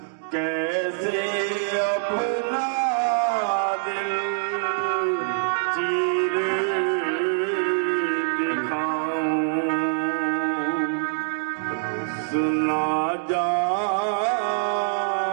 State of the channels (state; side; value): silent; left; digital silence